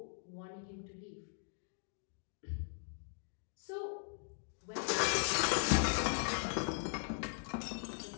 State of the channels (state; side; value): silent; right; digital silence